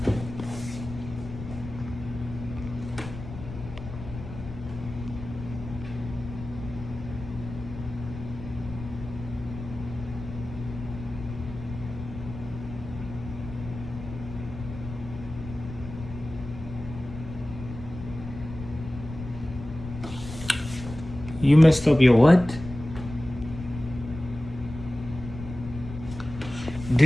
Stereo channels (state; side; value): noise; left; rumble, 11 dB below the sound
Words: You messed up your what?